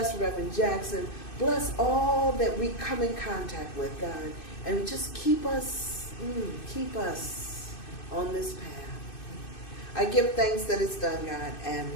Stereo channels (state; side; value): late; right; 2.6 ms